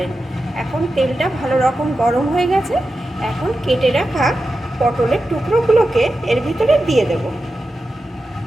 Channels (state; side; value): normal; both; correlation 0.91